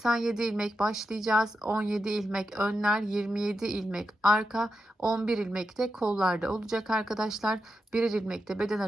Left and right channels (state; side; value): normal; both; correlation 0.88